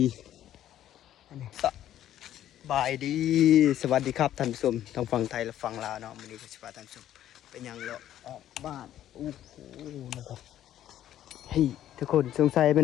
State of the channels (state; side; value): quieter; right; 11.9 dB